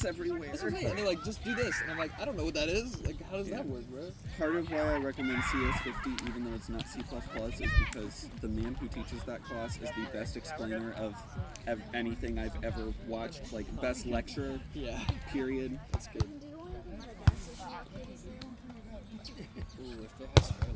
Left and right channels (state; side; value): identical; both; correlation 1.00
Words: everywhere? That's what I'm saying. And they're like, just do this, and I'm like, I don't know what that is. Like, how does that work, bro? Part of why I recommend CS50, even though it's not C++, is because the man who teaches that class is the best explainer of anything I've ever watched. Like, best lecturer. Yeah. Period. That's good. Ooh, if it has fair